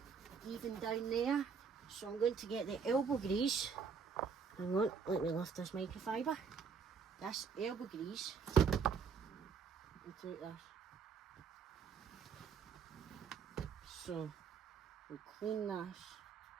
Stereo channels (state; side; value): quieter; left; 6.0 dB